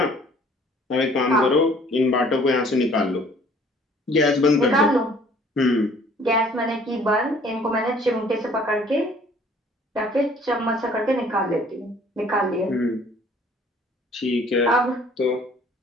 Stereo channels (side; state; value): both; normal; correlation 0.56